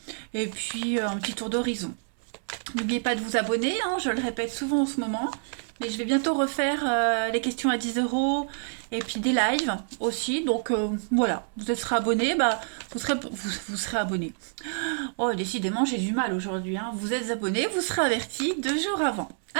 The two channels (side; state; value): left; silent; 60 dB below the other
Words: et puis un petit tour d'horizon. N'oubliez pas de vous abonner, hein, je le répète souvent en ce moment. Mais je vais bientôt refaire les questions à 10 euros et puis des lives aussi. Donc voilà, vous serez abonné, bah, vous serez abonné. Oh, décidément, j'ai du mal aujourd'hui. Hein. Vous êtes abonné, vous serez averti 2 jours avant.